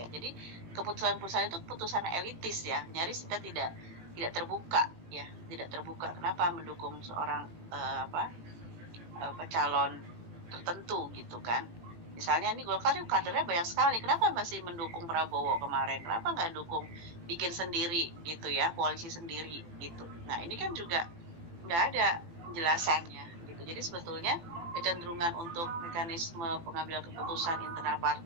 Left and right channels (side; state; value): left; late; 18 ms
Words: Jadi keputusan-keputusan itu keputusan elitis ya, nyaris kita tidak terbuka ya, tidak terbuka. Kenapa mendukung seorang calon tertentu gitu kan. Misalnya ini Golkar kadernya banyak sekali, kenapa masih mendukung Prabowo kemarin? Kenapa nggak dukung bikin sendiri gitu ya, koalisi sendiri gitu. Nah, ini kan juga nggak ada penjelasannya gitu. Jadi sebetulnya kecenderungan untuk mekanisme pengambilan keputusan internal